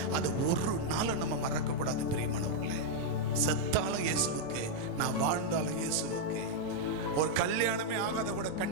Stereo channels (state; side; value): late; right; 5.8 ms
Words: அதை ஒரு நாள் நம்ம மறக்க கூடாது பிரியமானவர்களே. செத்தாலும் இயேசுவுக்கு, நான் வாழ்ந்தாலும் இயேசுவுக்கு. ஒரு கல்யாணமே ஆகாத கூட